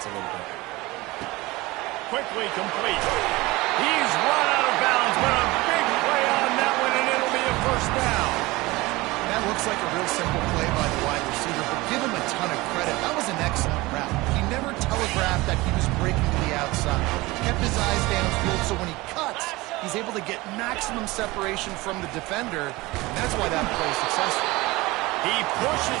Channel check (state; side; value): quieter; left; 21.2 dB